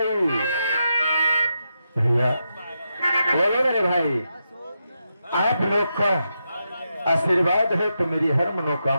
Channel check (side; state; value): both; inverted; correlation -0.85